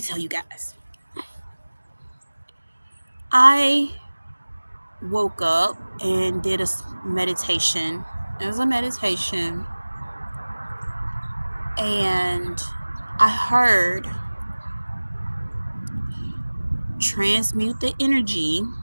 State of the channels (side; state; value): both; inverted; correlation -1.00